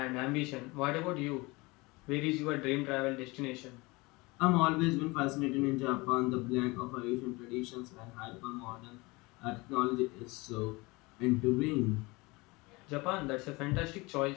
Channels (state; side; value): quieter; right; 24.2 dB